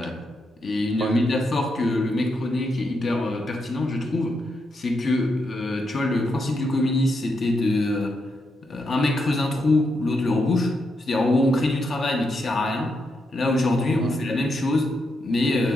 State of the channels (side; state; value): both; normal; correlation 0.82